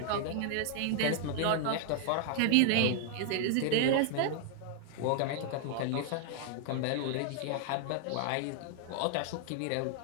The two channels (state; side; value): different; both; correlation 0.00